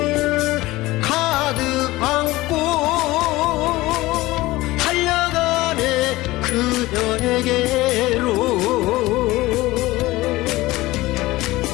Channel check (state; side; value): quieter; right; 18.9 dB